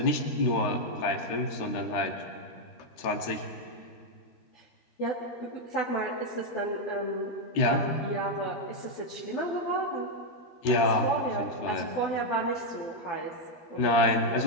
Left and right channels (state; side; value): late; right; 13 ms